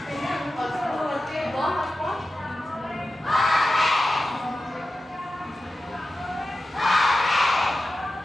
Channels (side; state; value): both; normal; correlation 0.93